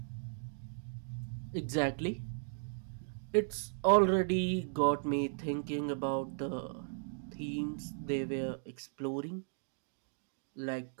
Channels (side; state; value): left; silent; digital silence